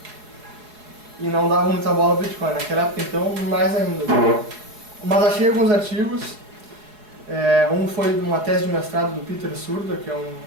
E não dava muita bola ao Bitcoin, naquela época então mais ainda. Mas achei alguns artigos, um foi uma tese de mestrado do Peter Surda, que é um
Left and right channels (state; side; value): late; left; 4.7 ms